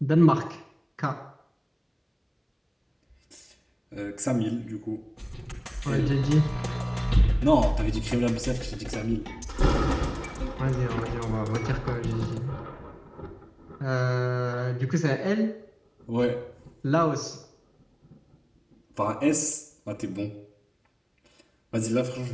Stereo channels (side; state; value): both; identical; correlation 1.00